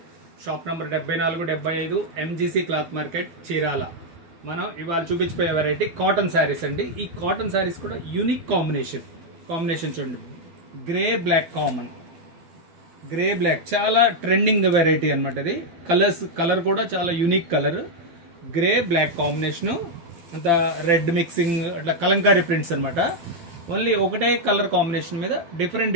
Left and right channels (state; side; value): late; left; 12 ms